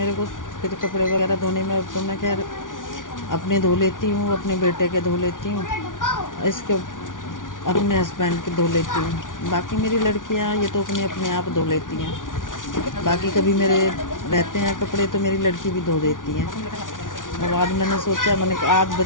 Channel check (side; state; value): right; late; 0.88 ms